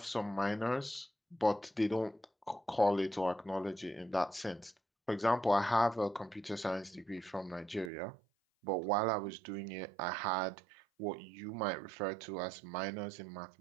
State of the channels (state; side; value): drops out; left; at 7.9 s